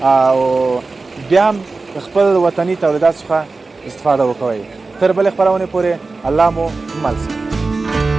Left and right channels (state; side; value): quieter; left; 3.8 dB